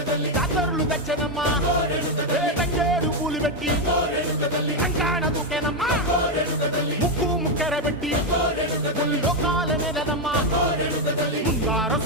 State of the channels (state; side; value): normal; both; correlation 0.05